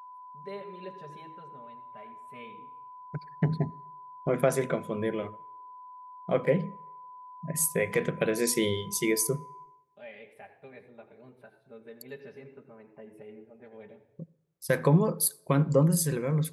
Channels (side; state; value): both; identical; correlation 1.00